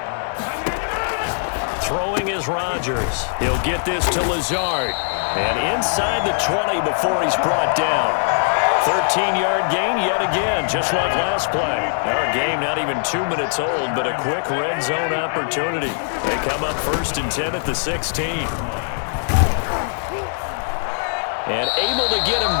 Throwing is Rodgers. He'll get this to Lazard. And inside the 20 before he's brought down. 13-yard gain yet again, just like last play. Our game not even 2 minutes old, but a quick red zone opportunity. They come up 1st and 10 at the 16. And able to get him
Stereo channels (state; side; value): silent; right; 65 dB below the other